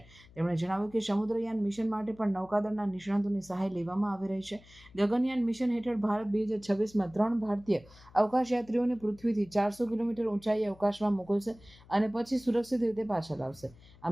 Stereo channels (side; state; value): left; noise; hum, 24 dB below the sound